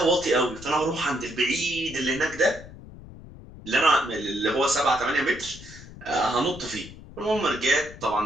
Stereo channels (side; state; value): left; noise; rumble, 16 dB below the sound